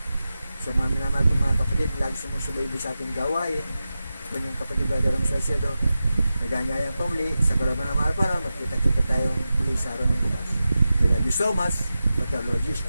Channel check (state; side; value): inverted; both; correlation -0.92